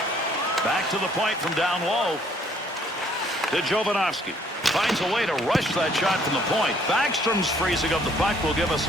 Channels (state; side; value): normal; both; correlation 0.62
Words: Back to the point from down low. To Jovanovski. Finds a way to rush that shot from the point. Backstrom's freezing up the puck. Will give us